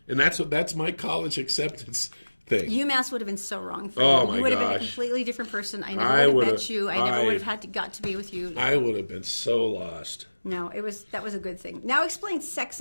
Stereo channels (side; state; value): both; inverted; correlation -1.00